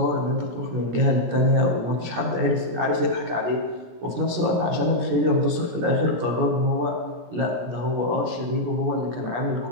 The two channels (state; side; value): late; left; 17 ms